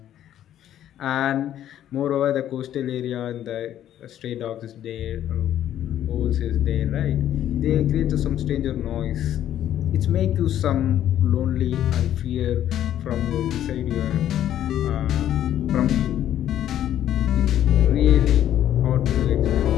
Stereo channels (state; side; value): quieter; right; 11.4 dB